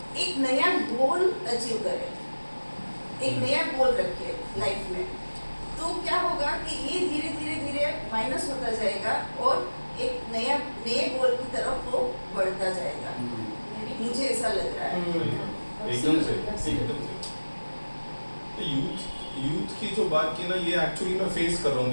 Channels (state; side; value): inverted; both; correlation -1.00